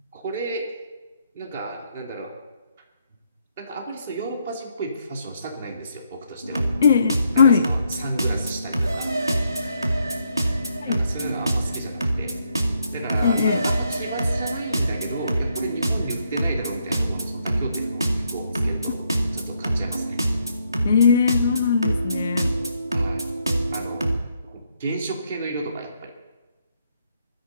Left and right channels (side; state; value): both; inverted; correlation -0.76